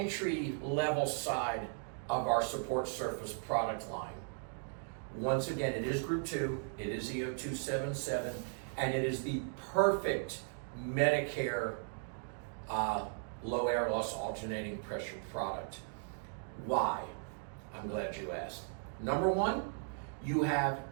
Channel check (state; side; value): silent; left; 53 dB below the other